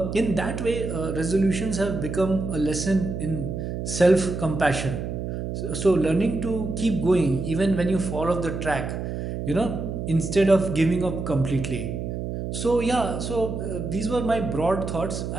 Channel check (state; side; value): noise; right; hum, 4 dB below the sound